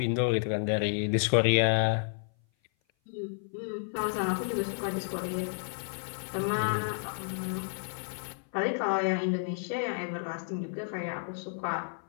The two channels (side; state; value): right; silent; 55 dB below the other